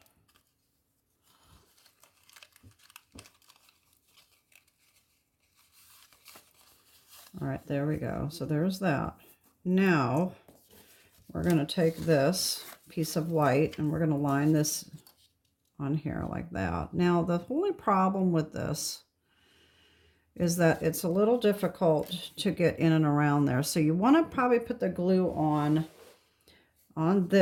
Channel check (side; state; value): both; identical; correlation 1.00